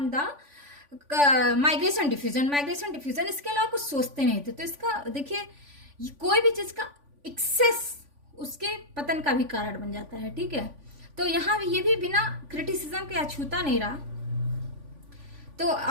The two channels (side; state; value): left; late; 3.5 ms